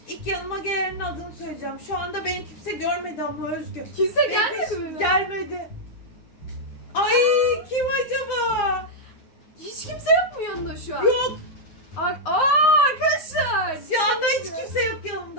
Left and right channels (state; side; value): late; right; 9.8 ms